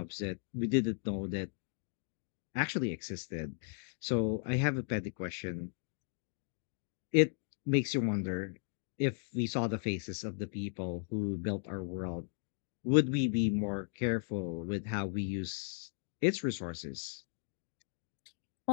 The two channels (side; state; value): right; silent; 54 dB below the other